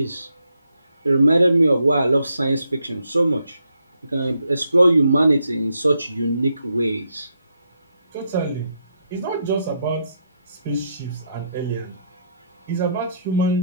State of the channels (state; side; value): inverted; both; correlation -0.78